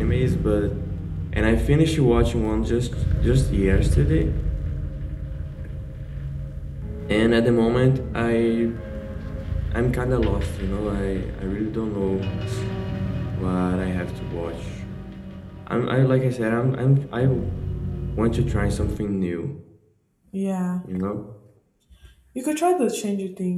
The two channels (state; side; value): identical; both; correlation 1.00